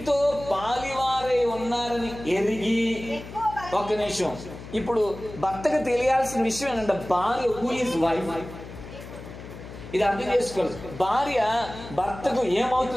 పాలివారై ఉన్నారని ఎరిగి. ఒక్క నిమిషం. ఇప్పుడు భర్తకు తెలియాల్సిన విషయం ఏంటంటే భార్య హూ ఈజ్ వైఫ్. ఇది అర్థం చేసుకోవాలి. భార్య భర్తకు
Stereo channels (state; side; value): noise; left; hum, 13 dB below the sound